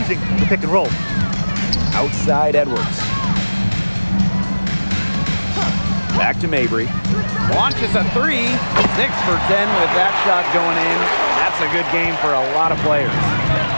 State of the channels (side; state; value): both; inverted; correlation -1.00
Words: the pick and roll. Outside Edwards. Back to Mabry. Launches a 3. 6 for 10 with that shot going in. That's a good game for a lot of players.